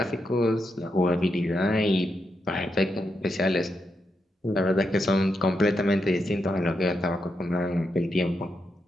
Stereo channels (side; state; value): both; normal; correlation 0.84